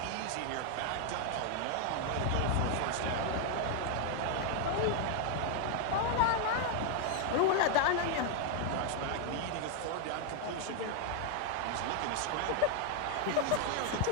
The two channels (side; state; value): both; different; correlation 0.01